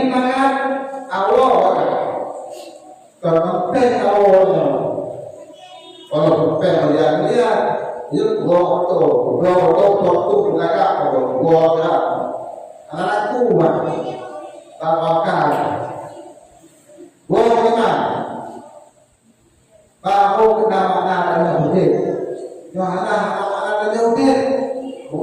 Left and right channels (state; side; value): identical; both; correlation 1.00